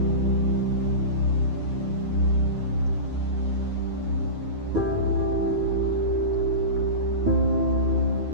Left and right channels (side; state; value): left; late; 9.6 ms